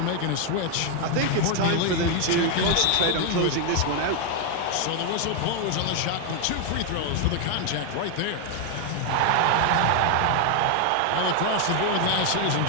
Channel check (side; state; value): both; different; correlation 0.01